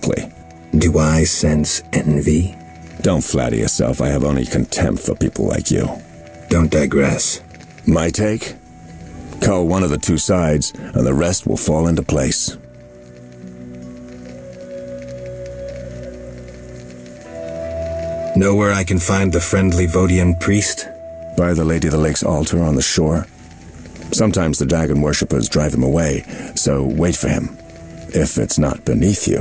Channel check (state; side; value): identical; both; correlation 1.00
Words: Do I sense envy? Don't flatter yourself. I have only contempt for people like you. Don't digress. My take? Cull one of the two sides, and the rest will fall into place. Know where I can find the friendly Vodian priest? By the Lady of the Lake's altar on the shore. Sometimes the dragon worshippers drive him away, so wait for him. If it's not beneath